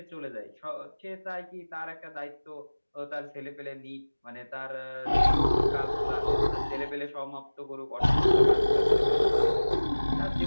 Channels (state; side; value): inverted; both; correlation -1.00